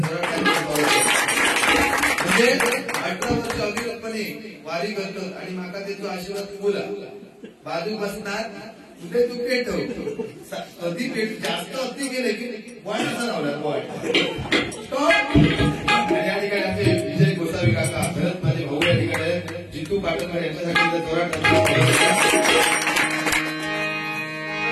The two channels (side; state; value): both; identical; correlation 1.00